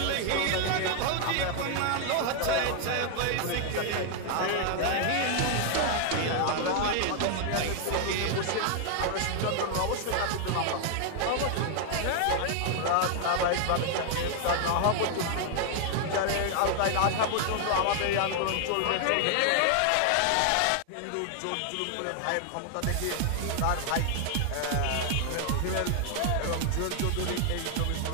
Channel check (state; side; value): different; both; correlation 0.00